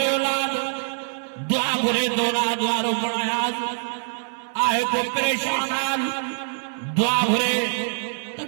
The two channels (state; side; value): silent; left; 62 dB below the other